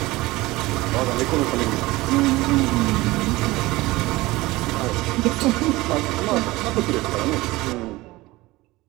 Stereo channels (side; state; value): left; quieter; 19.9 dB